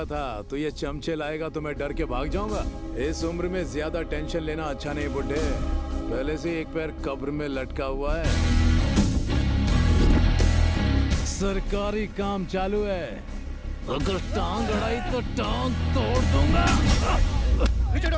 था तू ये चमचे लाएगा तो मैं डर के भाग जाऊंगा? इस उम्र में ज्यादा टेंशन लेना अच्छा नहीं बुड्ढे। पहले से एक पैर कब्र में लटका हुआ है। सरकारी काम चालू है, अगर टांग अड़ाई तो टांग तोड़ दूंगा। पीछे हटो,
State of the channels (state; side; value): identical; both; correlation 1.00